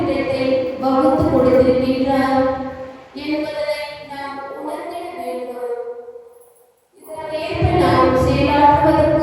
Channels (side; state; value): both; identical; correlation 1.00